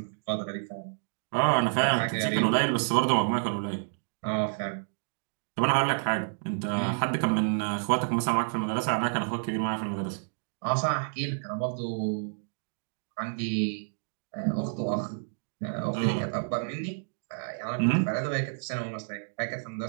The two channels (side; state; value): left; silent; digital silence